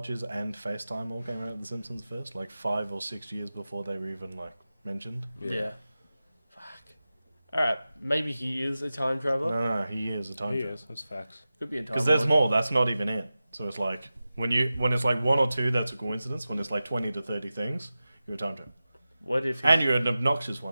and FaceTime all came out of The Simpsons first, like 5 or 6 years before they were even like mentioned. Yeah. Fuck. All right. Maybe he is a time traveler. No, he is a time He traveler. is. That's facts. Could be a time. Because there's lord. more. That's not even it. So it's like when it's like 1 or 2, that's a coincidence. When it's like 20 to 30 things, you're a time traveler, What if? and you're an obnoxious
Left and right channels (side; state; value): both; inverted; correlation -0.94